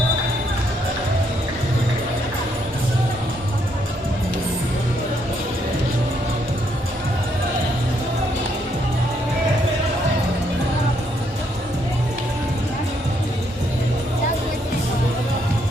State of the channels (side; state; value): both; normal; correlation 0.73